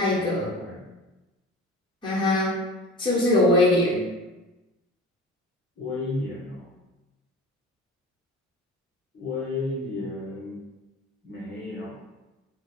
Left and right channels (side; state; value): both; normal; correlation 0.36